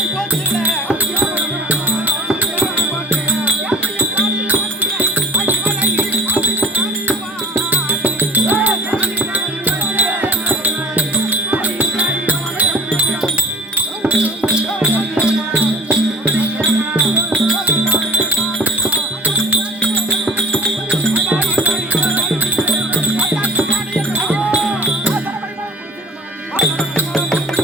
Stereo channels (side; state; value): both; normal; correlation 0.40